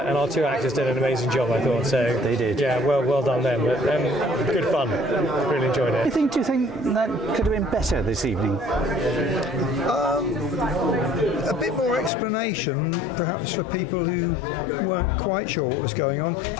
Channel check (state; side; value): drops out; right; at 12.1 s